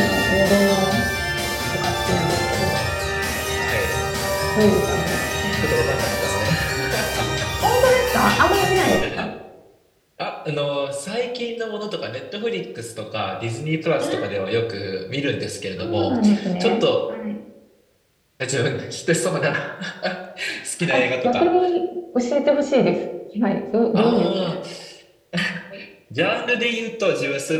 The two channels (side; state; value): both; identical; correlation 1.00